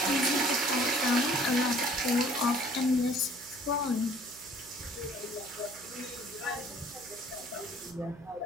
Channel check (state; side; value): noise; right; hum, 22 dB below the sound